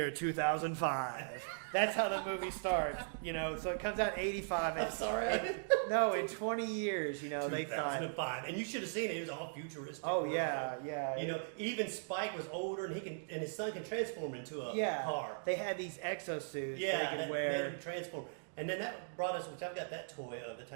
2005. That's how the movie starts. So it comes out in 85. I'm sorry. No, in 20 years, they thought. 2005, and you should have seen it. It was all futuristic. Oh yeah. Even Spike was older, and his son can transform into a car. They had these exosuits. Yeah, they that could wear. made him transform. And then that brought us, which I've got that toy of the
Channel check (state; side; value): silent; left; digital silence